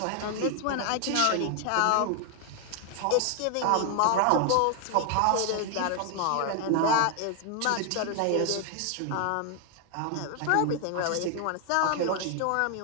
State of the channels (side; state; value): both; different; correlation 0.00